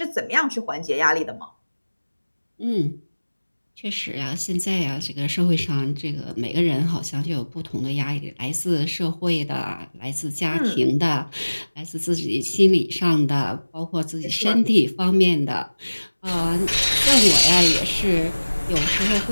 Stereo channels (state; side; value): inverted; both; correlation -1.00